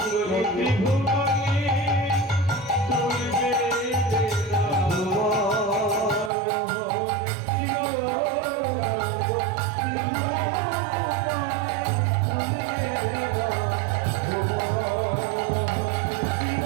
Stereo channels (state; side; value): drops out; left; at 6.3 s